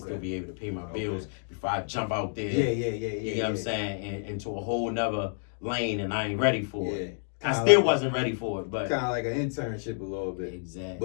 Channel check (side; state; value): right; silent; digital silence